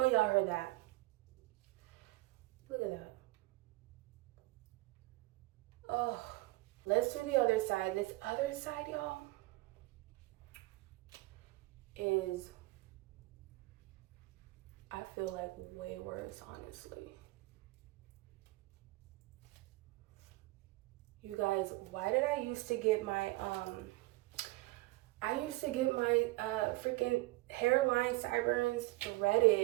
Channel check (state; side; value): quieter; left; 20.8 dB